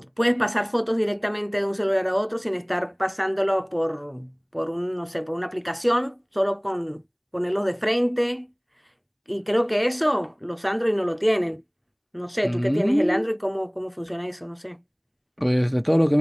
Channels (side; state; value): both; identical; correlation 1.00